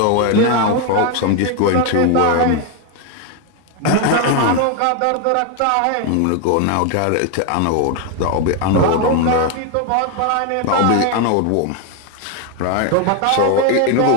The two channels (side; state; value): both; different; correlation 0.01